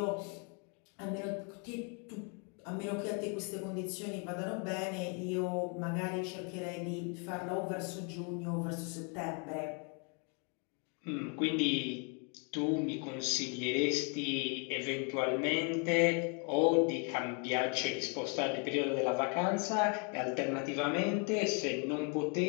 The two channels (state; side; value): quieter; right; 36.9 dB